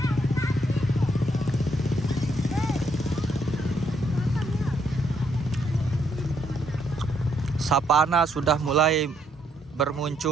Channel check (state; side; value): normal; both; correlation 0.73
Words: Sapana sudah mulai